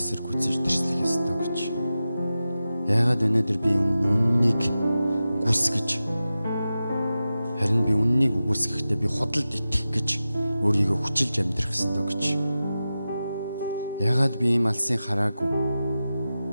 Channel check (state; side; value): inverted; both; correlation -0.93